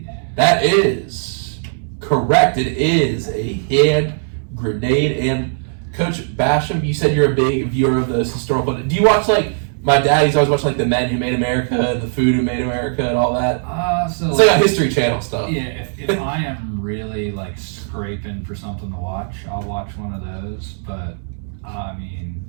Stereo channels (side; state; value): left; silent; digital silence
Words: That is correct. It is a hand grenade. And Coach Bashioum, you said you're a big viewer of those historical. Do you watch like my dad? He's always watching like The Men Who Made America and The Food Who Made America and all that. So it's like a History Channel stuff. Yeah, if I am really like scraping for something to watch, I'll watch one of those. But I